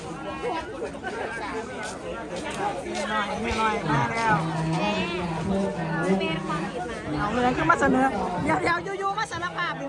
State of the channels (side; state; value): both; identical; correlation 1.00